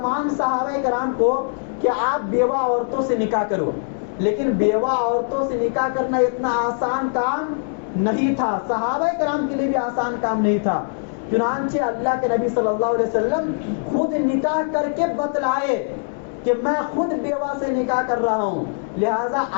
صحابہ کرام کو کہ آپ بیوہ عورتوں سے نکاح کرو. لیکن بیوہ عورتوں سے نکاح کرنا اتنا آسان کام نہیں تھا، صحابہ کرام کے لیے بھی آسان کام نہیں تھا. چنانچہ اللہ کے نبی صلی اللہ علیہ وسلم خود نکاح کر کے بتلائے کہ میں خود بیوہ سے نکاح کر رہا ہوں، لہذا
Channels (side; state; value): right; silent; 64 dB below the other